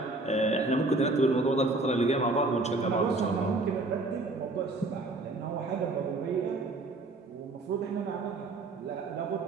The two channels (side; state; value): left; quieter; 3.1 dB